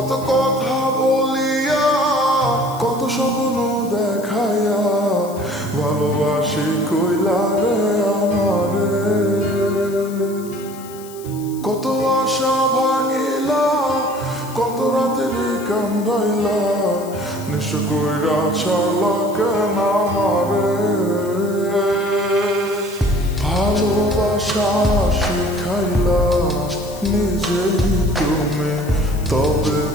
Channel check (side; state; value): left; noise; hiss, 19 dB below the sound